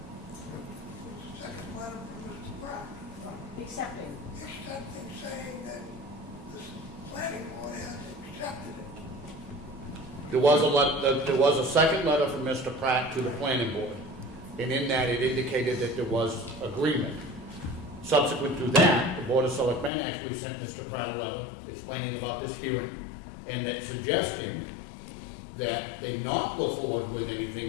Second letter from Mr. Pratt. Accepting. Accepting, saying that the planning board has accepted it. There was a second letter from Mr. Pratt to the planning board, and in that it indicated that there was agreement. Subsequent to that, the Board of Selectmen actually sent Mr. Pratt a letter explaining about this hearing, and that suggesting that they not go forward with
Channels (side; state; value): right; drops out; at 19.9 s